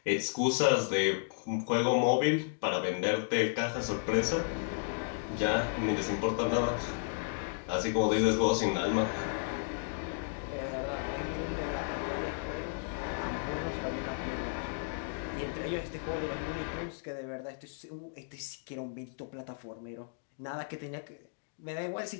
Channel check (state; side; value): silent; right; digital silence